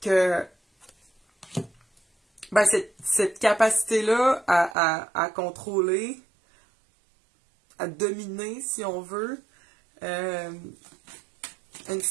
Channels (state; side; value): drops out; left; at 4.8 s